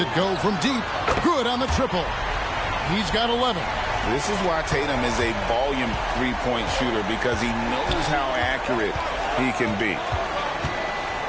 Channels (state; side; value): identical; both; correlation 1.00